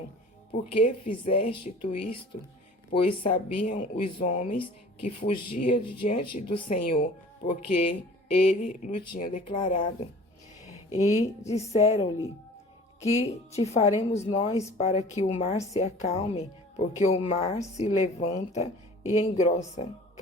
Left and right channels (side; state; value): both; normal; correlation 0.46